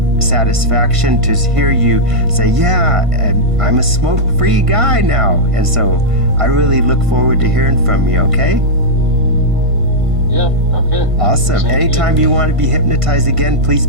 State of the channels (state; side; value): late; left; 1.5 ms